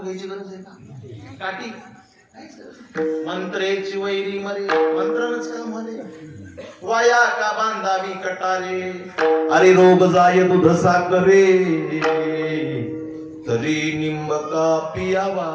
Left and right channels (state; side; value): identical; both; correlation 1.00